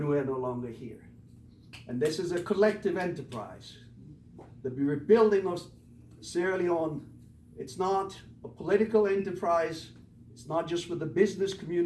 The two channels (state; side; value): identical; both; correlation 1.00